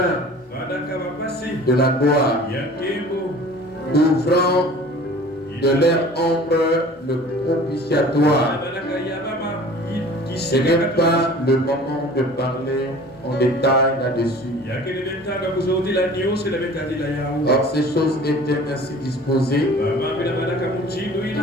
de la gloire, ouvrant de leur ombre le propitiatoire. Ce n'est pas le moment de parler en détail là-dessus. Or, ces choses étaient ainsi disposées.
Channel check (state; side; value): normal; both; correlation 0.45